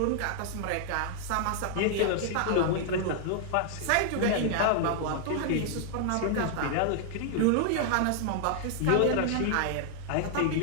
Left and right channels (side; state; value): both; different; correlation -0.01